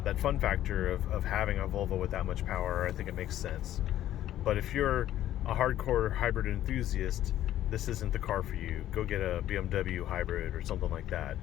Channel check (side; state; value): right; quieter; 12.6 dB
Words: fun factor of having a Volvo with that much power, I think it makes sense. But if you're a hardcore hybrid enthusiast, this isn't the car for you. Go get a BMW hybrid or something like that.